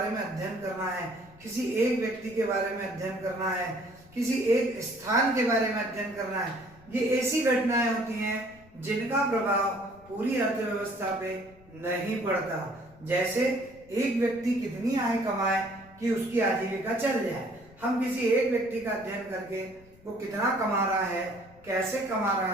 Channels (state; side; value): noise; left; rumble, 24 dB below the sound